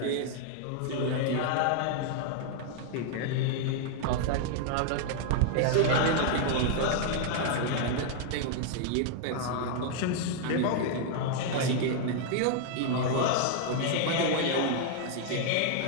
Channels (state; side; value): different; both; correlation -0.01